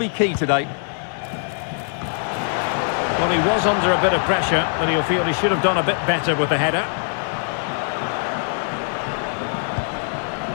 key today. Well, he was under a bit of pressure, but he'll feel he should have done a bit better with the header.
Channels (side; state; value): right; silent; digital silence